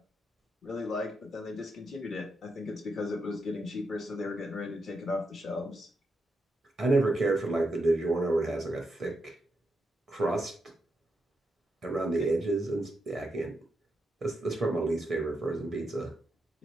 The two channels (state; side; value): normal; both; correlation 0.83